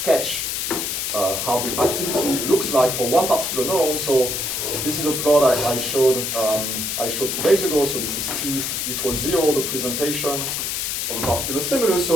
How the activity looks like for one particular neuron. So this is a plot I showed 2 days ago. So this is t equals 0, the presentation of a particular stimulus.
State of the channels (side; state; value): left; noise; hiss, 2 dB below the sound